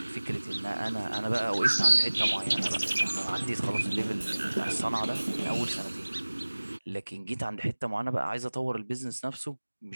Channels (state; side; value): inverted; both; correlation -1.00